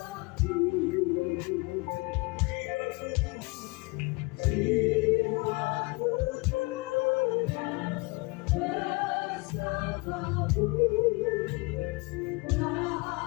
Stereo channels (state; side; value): quieter; right; 27.0 dB